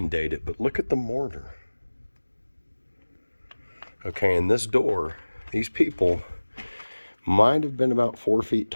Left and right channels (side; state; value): both; inverted; correlation -1.00